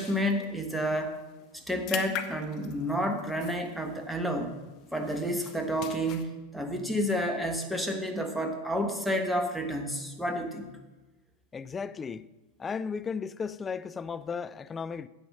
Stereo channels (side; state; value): both; normal; correlation 0.54